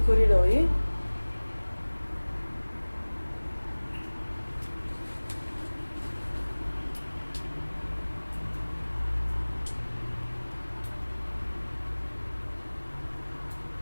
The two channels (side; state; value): both; inverted; correlation -1.00